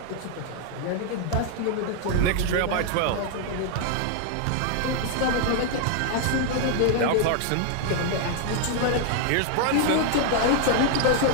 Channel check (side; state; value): both; different; correlation 0.00